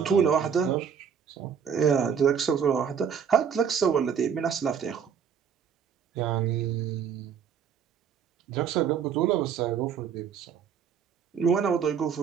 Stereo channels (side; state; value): left; quieter; 7.3 dB